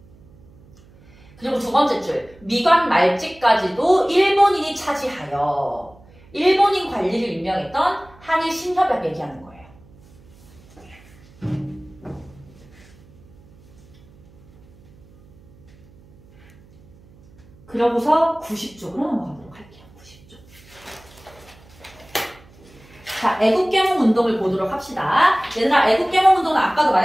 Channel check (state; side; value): noise; right; hum, 26 dB below the sound